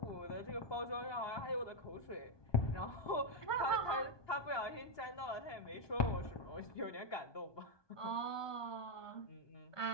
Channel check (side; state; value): right; late; 1.2 ms